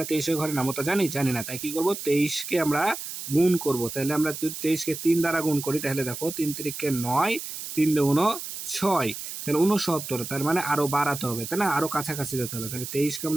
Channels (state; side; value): noise; right; hiss, 8 dB below the sound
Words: 23-এর ঘরে নামতা জানি না। তাই কি করব? 23কে আমরা গুণ করব। তাহলে আমরা যদি 23কে 3 দ্বারা গুণ করি তাহলে দেখো 3 তিরিকে 9, 3 দুগুণ 6, তাহলে 69। তার মানে আরো বাড়াতে হবে, তাই না? আরো কাছাকাছি যেতে হবে। তাহলে 23কে